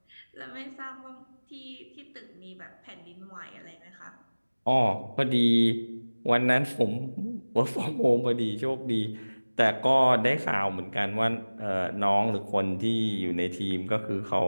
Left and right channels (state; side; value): inverted; both; correlation -1.00